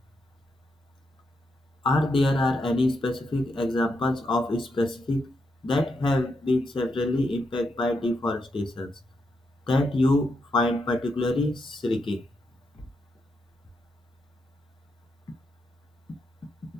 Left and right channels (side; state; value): both; normal; correlation 0.82